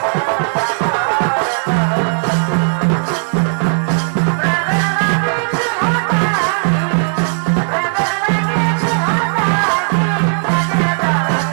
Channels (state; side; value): silent; left; digital silence